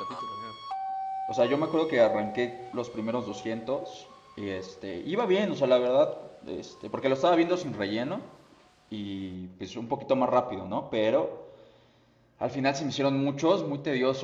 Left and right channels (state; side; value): identical; both; correlation 1.00